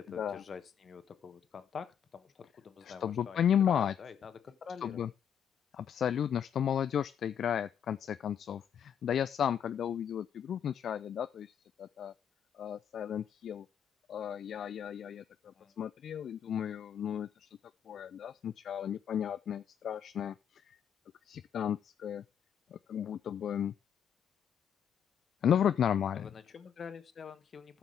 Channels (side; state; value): right; quieter; 8.6 dB